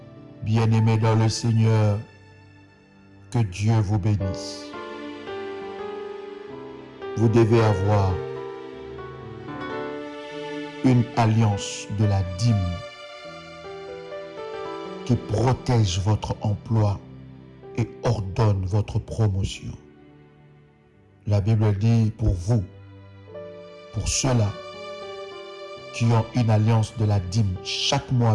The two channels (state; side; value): identical; both; correlation 1.00